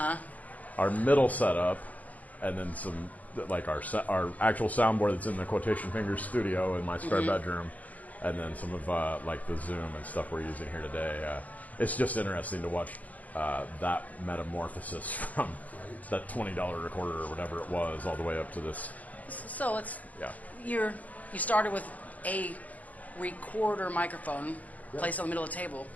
our middle setup, and then some like our actual soundboard that's in the Quotation Fingers studio in my spare bedroom, and then some of like the Zoom and stuff we're using here today. It's just interesting to watch that metamorphosis from that $20 recorder or whatever it was all the way up to this. So you started with a recorder microphone placed on the middle of the table.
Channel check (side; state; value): right; late; 0.075 ms